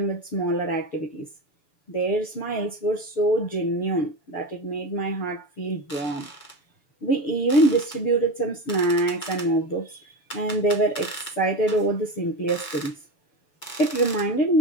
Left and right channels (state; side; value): late; right; 7.0 ms